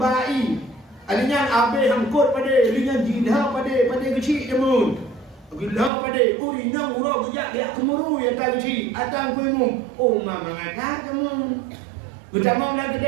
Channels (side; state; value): left; drops out; at 5.9 s